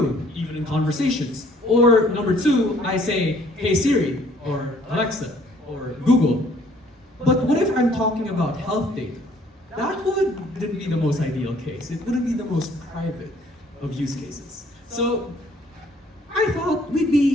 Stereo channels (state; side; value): normal; both; correlation 0.60